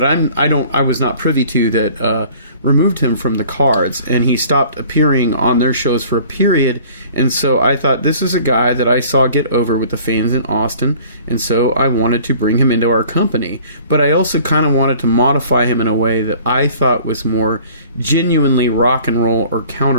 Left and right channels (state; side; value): inverted; both; correlation -0.50